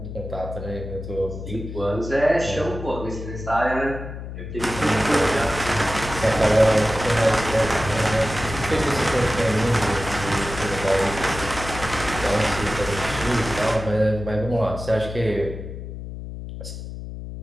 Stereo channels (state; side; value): noise; left; hum, 9 dB below the sound